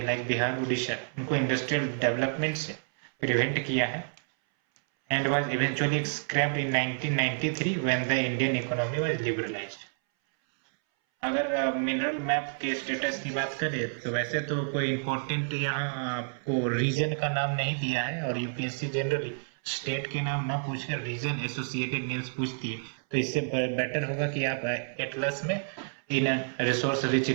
लाइक बिहार उड़ीसा, उनको इंडस्ट्रियल डेवलपमेंट से प्रिवेंट किया है and was eventually scraped in 1993 when the Indian economy was liberalised. अगर मिनरल मैप के स्टेटस की बात करें तो वैसे तो कोई इंपॉर्टेंट यहाँ आपको रीजन का नाम नहीं दिया है, और यूपीएससी जनरली स्टेट के नाम ना पूछकर रीजन एसोसिएटेड नेम्स पूछती है, तो इससे बेटर होगा कि आप एटलस में इन रिसोर्स रिच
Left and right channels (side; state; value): left; silent; 58 dB below the other